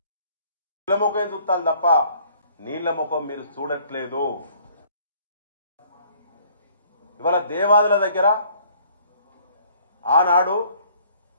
ముఖం చూస్తారు తప్ప నీళ్ల ముఖం మీరు చూడట్లేదు. ఇవాళ దేవాదుల దగ్గర ఆనాడు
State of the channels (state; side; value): inverted; both; correlation -0.59